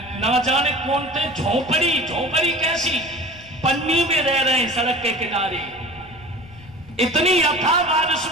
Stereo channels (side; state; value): left; noise; rumble, 22 dB below the sound